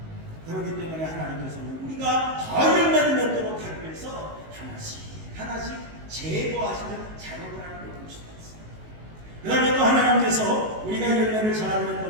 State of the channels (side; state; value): left; late; 19 ms